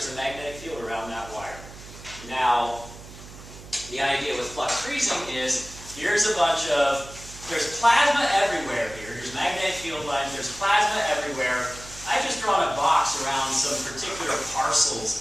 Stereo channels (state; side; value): noise; right; hum, 16 dB below the sound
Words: a magnetic field around that wire. Now, the idea with flux freezing is, here's a bunch of, there's plasma everywhere here. Here's magnetic field lines, there's plasma everywhere. I've just drawn a box around some particular parcels